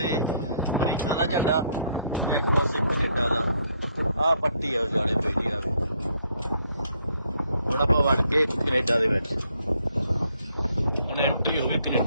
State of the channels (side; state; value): both; inverted; correlation -0.70